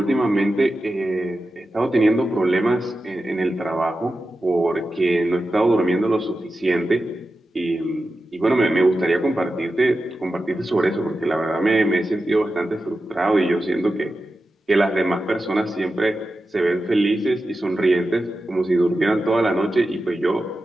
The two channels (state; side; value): normal; both; correlation 0.91